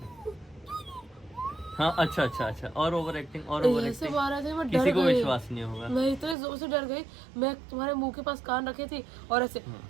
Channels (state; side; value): drops out; left; at 6.4 s